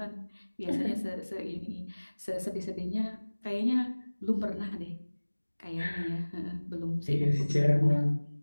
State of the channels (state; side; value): inverted; both; correlation -1.00